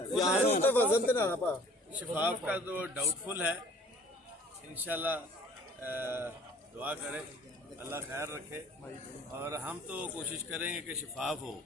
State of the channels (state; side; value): normal; both; correlation 0.52